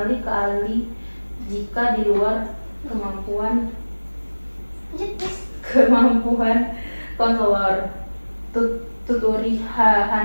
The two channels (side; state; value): both; inverted; correlation -1.00